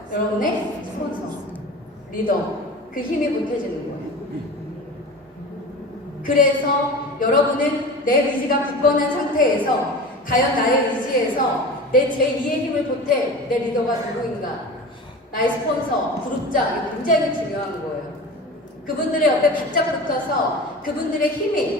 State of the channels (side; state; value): both; normal; correlation 0.34